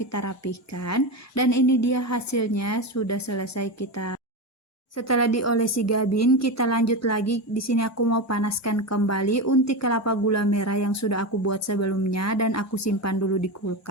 rapihkan. Dan ini dia hasilnya sudah selesai kita. Setelah diolesi gabin, kita lanjut lagi. Di sini aku mau panaskan kembali unti kelapa gula merah yang sudah aku buat sebelumnya dan aku simpan dulu di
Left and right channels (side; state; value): both; normal; correlation 0.18